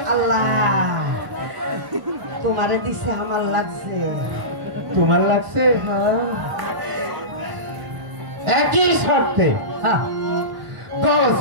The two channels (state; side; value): late; left; 1.0 ms